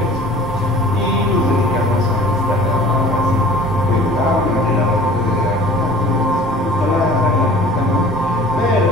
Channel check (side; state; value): both; normal; correlation 0.46